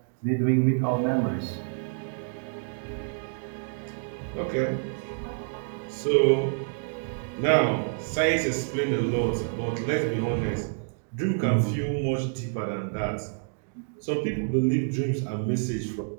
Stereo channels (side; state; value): left; silent; digital silence